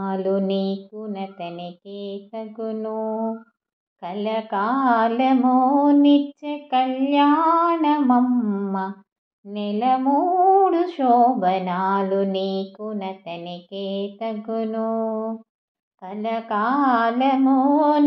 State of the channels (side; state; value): both; identical; correlation 1.00